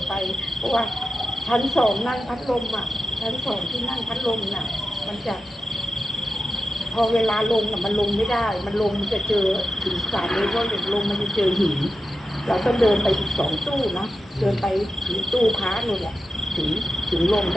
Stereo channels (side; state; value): both; normal; correlation 0.91